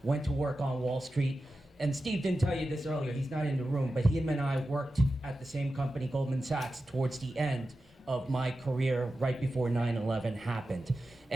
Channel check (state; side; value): normal; both; correlation 0.92